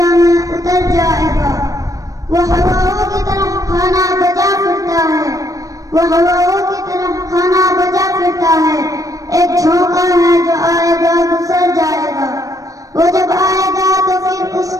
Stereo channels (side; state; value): left; late; 0.16 ms